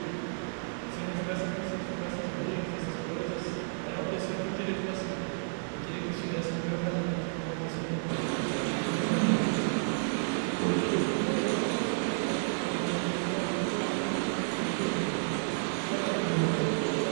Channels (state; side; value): silent; left; digital silence